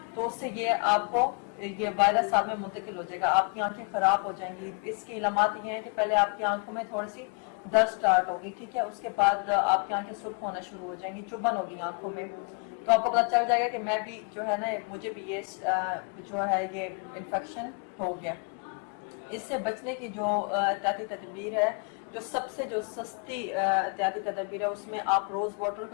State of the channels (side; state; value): right; quieter; 39.7 dB